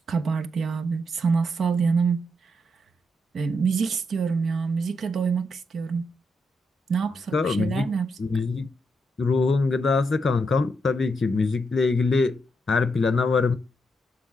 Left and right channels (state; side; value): normal; both; correlation 0.81